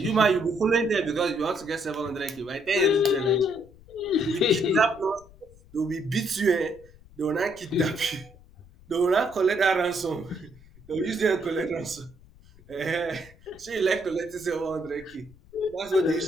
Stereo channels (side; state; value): left; noise; rumble, 24 dB below the sound